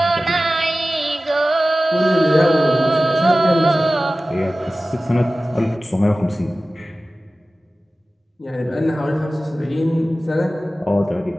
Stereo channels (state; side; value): normal; both; correlation 0.96